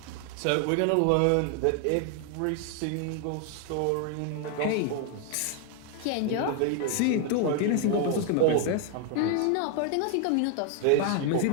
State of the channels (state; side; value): different; both; correlation 0.00